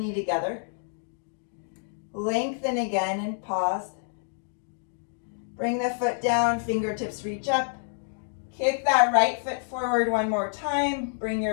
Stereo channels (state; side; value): silent; right; digital silence